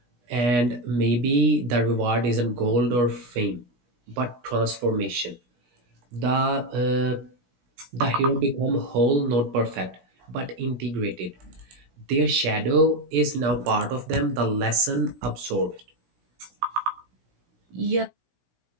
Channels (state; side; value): late; left; 16 ms